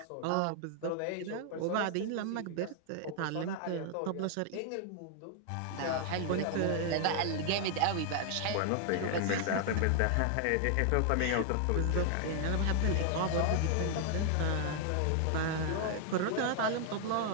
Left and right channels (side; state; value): both; different; correlation 0.00